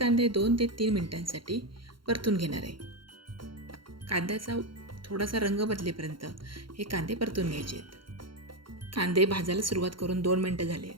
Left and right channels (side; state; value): left; late; 0.73 ms